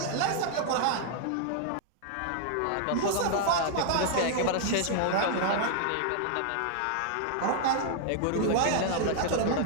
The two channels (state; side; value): different; both; correlation -0.01